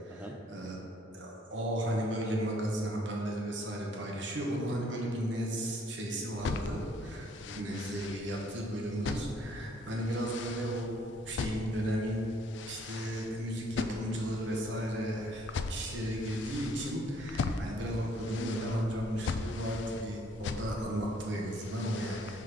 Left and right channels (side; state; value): both; normal; correlation 0.64